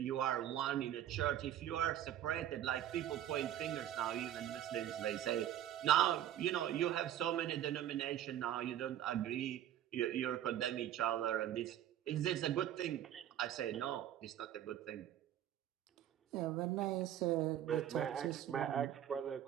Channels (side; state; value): left; quieter; 11.5 dB